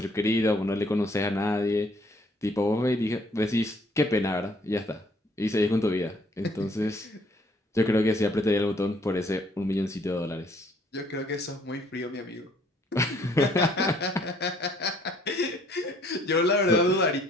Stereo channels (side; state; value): both; normal; correlation 0.62